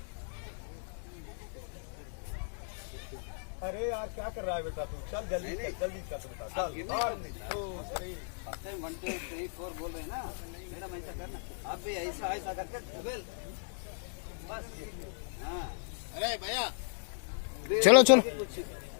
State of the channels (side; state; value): right; silent; digital silence